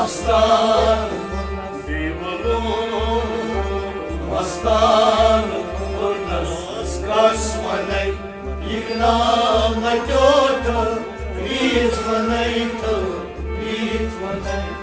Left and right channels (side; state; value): both; identical; correlation 1.00